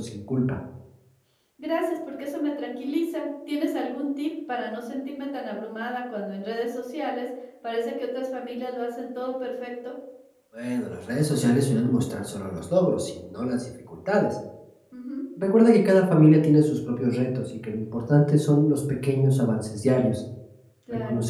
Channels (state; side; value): identical; both; correlation 1.00